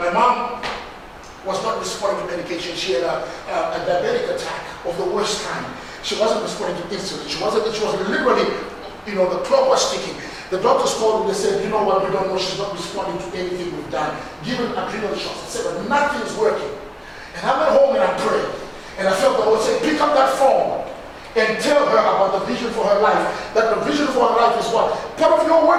mom was not responding to medication. She had a diabetic attack of the worst kind. She wasn't responding to insulin. She was literally, the clock was ticking. The doctors called and they said, you know what, we don't know, she's not responding to anything we've done. Given adrenal shots. I said, but nothing's working. And I went home and I prayed. And I felt the Lord say, pick up that phone and tell her about the vision for her life. That the vision for her life is what? Part of your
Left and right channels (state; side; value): identical; both; correlation 1.00